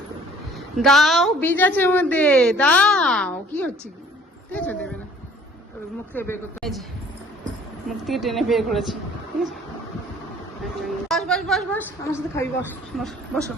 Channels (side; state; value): both; normal; correlation 0.55